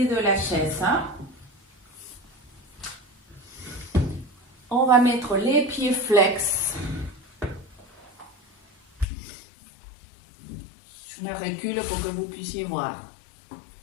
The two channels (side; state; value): right; drops out; at 9.1 s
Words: de la chaise. On va mettre les pieds flex. Je me recule pour que vous puissiez voir.